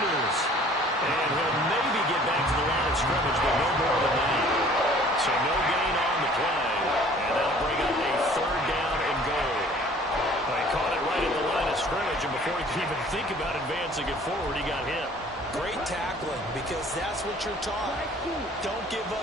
And he'll maybe get back to the line of scrimmage, but no more than that. So no gain on the play. And that'll bring up a 3rd down and goal. He caught it right at the line of scrimmage, and before he could even think about advancing it forward, he got hit. Great tackling, because that's what you're taught. Don't give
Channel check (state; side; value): normal; both; correlation 0.52